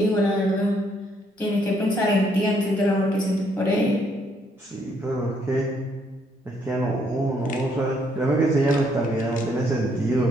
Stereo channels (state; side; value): normal; both; correlation 0.70